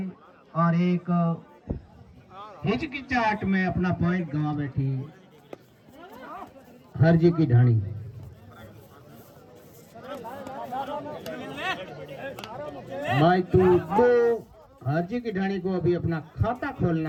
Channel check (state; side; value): identical; both; correlation 1.00